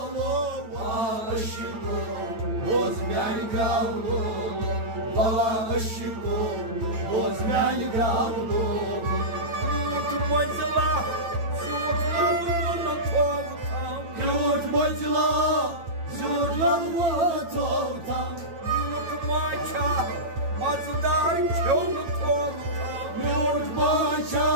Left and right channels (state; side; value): late; left; 9.0 ms